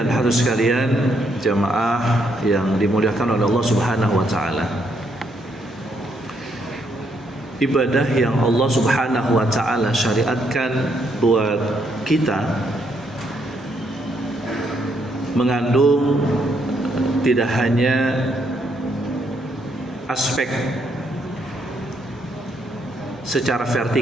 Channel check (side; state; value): both; normal; correlation 0.74